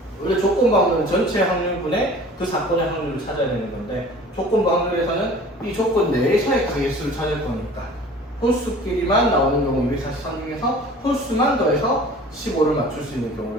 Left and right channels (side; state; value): both; normal; correlation 0.45